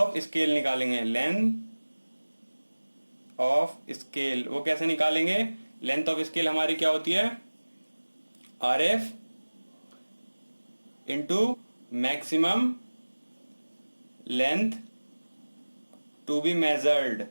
स्केल निकालेंगे। लेंथ ऑफ स्केल वो कैसे निकालेंगे? लेंथ ऑफ स्केल हमारी क्या होती है? RF into maximum length to be measured.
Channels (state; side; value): inverted; both; correlation -1.00